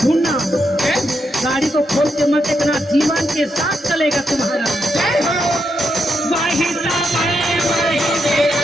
ढूंढना। गाड़ी को खोल के मत देखना, जीवन के साथ चलेगा तुम्हारा। जय हो। वाहिता वाहे वाहे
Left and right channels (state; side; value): normal; both; correlation 0.82